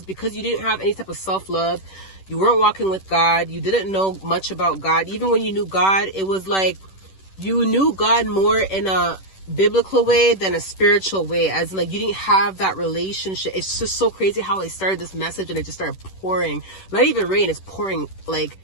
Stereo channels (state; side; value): late; right; 10 ms